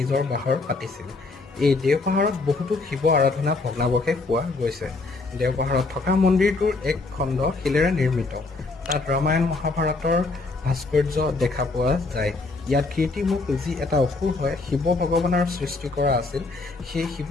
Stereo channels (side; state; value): right; quieter; 3.5 dB